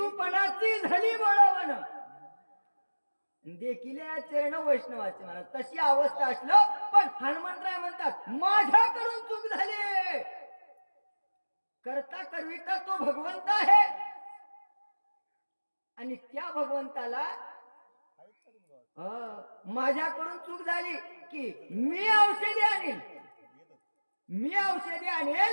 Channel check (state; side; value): inverted; both; correlation -1.00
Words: पणाची झाली बळवण देखील चरण वैष्णवाचे महाराज तशी अवस्था असलं पण हनुमंतराय म्हणतात माझ्याकडून चूक झाली. करता करविता तो भगवंत आहे आणि त्या भगवंताला माझ्याकडून चूक झाली की मी औषधी